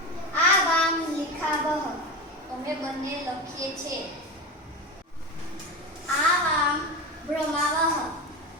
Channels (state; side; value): normal; both; correlation 0.22